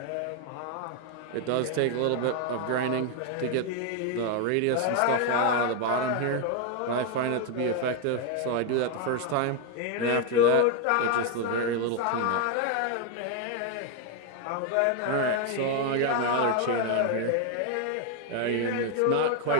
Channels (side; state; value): both; different; correlation 0.01